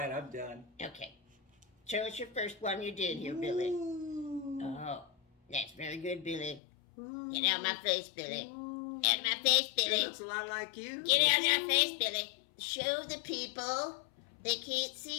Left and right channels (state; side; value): drops out; right; at 6.6 s